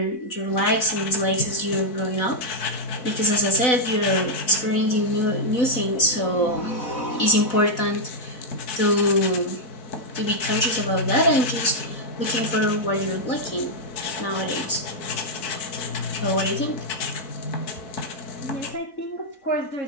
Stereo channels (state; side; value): late; right; 4.0 ms